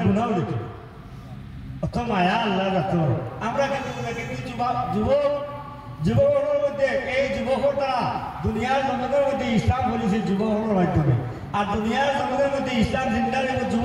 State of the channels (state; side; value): identical; both; correlation 1.00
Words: গুণাও দিত অত মায়া আল্লাহ যাত আমরা কিন্তু যুবকের মধ্যে এই যুবকের দ্বারা দুনিয়ার জগতের মধ্যে ইসলাম বলেছে যুবকের মাধ্যমে আর দুনিয়ার জগতের মধ্যে ইসলাম জিন্দার